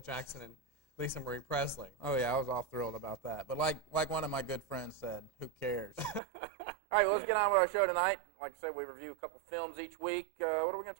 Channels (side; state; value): left; drops out; at 6.2 s